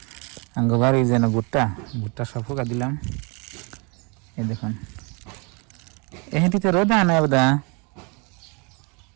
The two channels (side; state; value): left; quieter; 31.6 dB